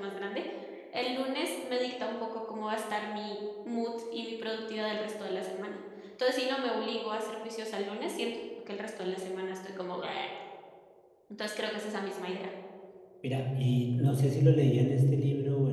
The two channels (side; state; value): both; identical; correlation 1.00